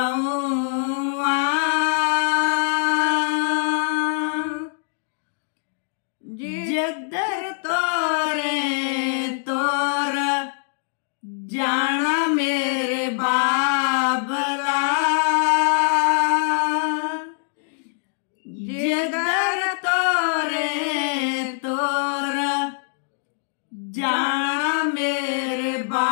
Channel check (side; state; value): right; silent; digital silence